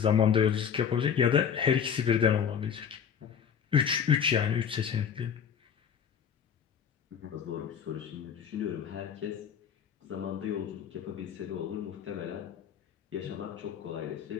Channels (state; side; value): quieter; right; 7.7 dB